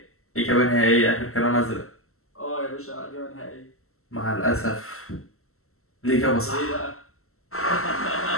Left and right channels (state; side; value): late; right; 0.63 ms